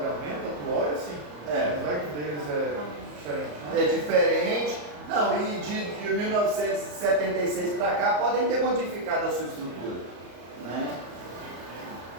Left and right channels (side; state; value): left; late; 34 ms